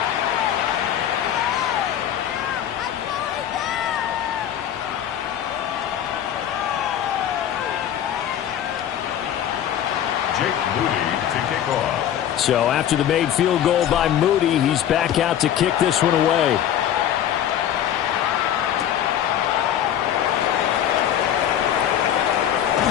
So after the made field goal by Moody, he's back out to kick this one away.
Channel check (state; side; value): quieter; right; 10.4 dB